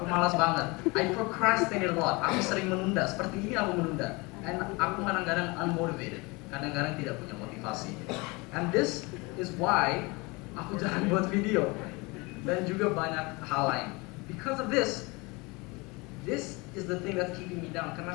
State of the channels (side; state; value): right; quieter; 26.0 dB